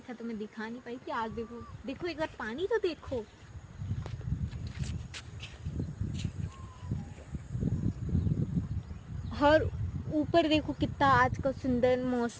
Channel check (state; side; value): identical; both; correlation 1.00